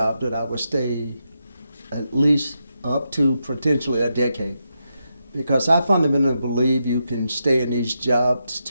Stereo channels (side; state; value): both; inverted; correlation -0.85